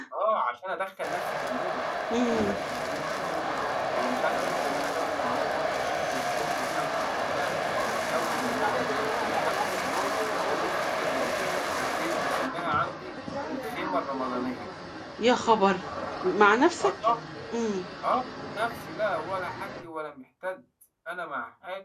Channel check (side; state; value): both; identical; correlation 1.00